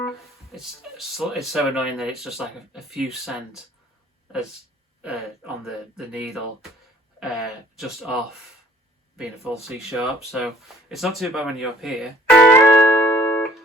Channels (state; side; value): normal; both; correlation 0.56